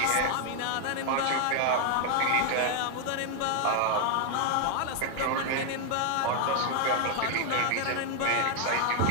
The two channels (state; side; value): different; both; correlation 0.00